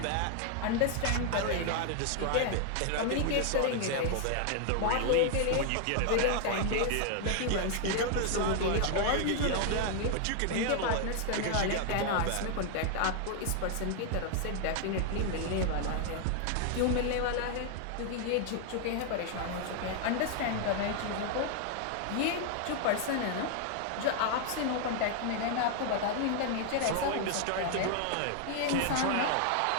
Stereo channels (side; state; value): both; different; correlation 0.00